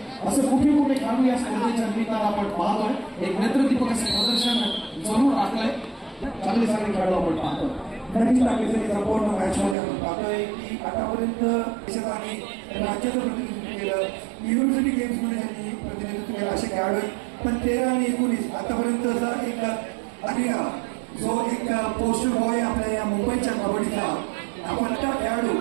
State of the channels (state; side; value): drops out; left; at 9.8 s